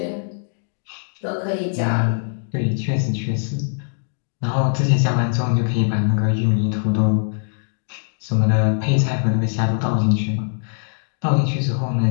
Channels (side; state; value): right; silent; digital silence